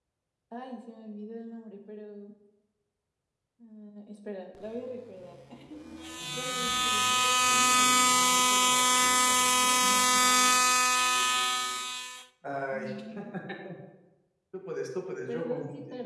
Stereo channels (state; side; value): identical; both; correlation 1.00